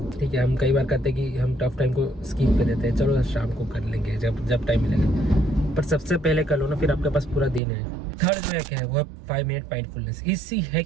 ठीक है। हम कई बार कहते हैं कि हम टफ टाइम को स्किप कर देते हैं, चलो शाम को कर लेंगे जब टाइम मिलेगा, पर सबसे पहले कर लो ना, फिर आपके पास पूरा दिन है। थर्ड जो हैक है वो है 5 मिनट माइंडफुलनेस। इसी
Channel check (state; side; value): drops out; left; at 7.6 s